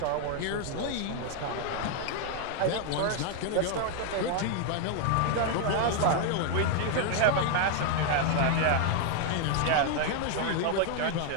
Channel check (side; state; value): both; different; correlation 0.00